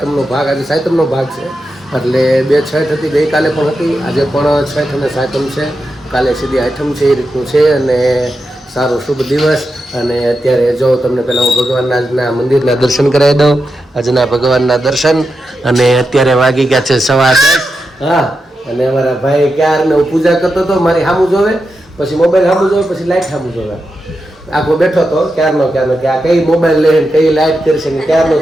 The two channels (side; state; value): both; normal; correlation 0.88